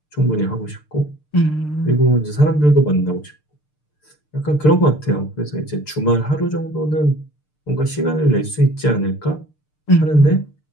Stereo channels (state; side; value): late; right; 6.7 ms